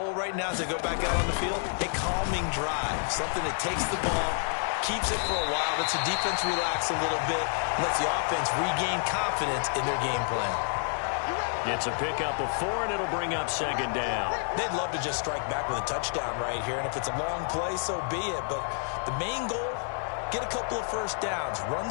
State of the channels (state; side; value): silent; right; 59 dB below the other